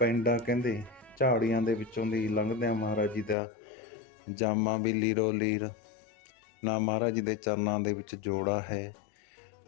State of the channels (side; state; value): right; drops out; at 3.4 s